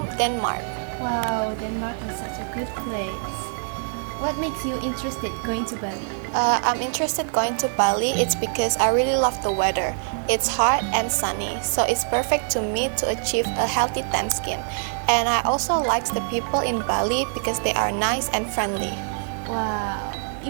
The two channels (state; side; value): silent; left; 62 dB below the other